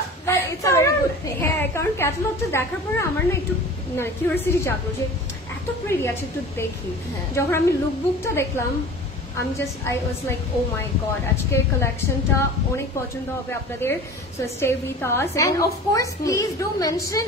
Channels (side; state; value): both; normal; correlation 0.39